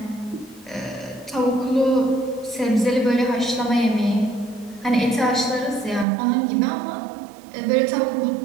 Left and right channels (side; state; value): left; drops out; at 6.1 s